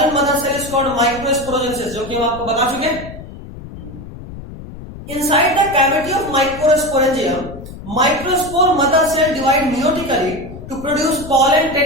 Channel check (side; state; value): left; noise; rumble, 13 dB below the sound